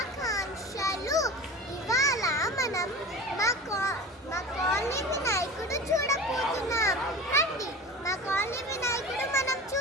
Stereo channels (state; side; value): normal; both; correlation 0.34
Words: ఇవాళ మనం మా కాలనీ వినాయకుడు చూడబోతున్నాం. రండి, మా కాలనీ వినాయకుడు మనం